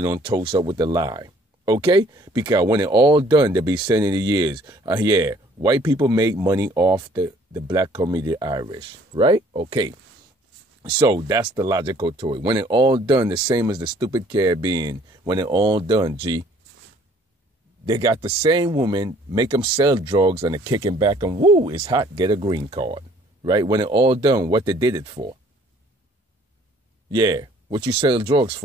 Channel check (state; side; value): normal; both; correlation 0.58